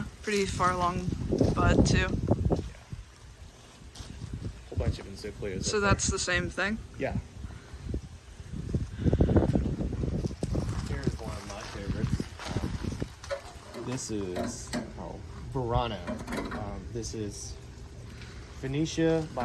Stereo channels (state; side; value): identical; both; correlation 1.00